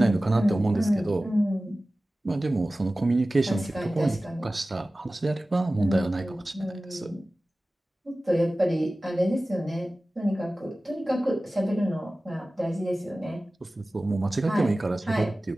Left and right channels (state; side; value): normal; both; correlation 0.96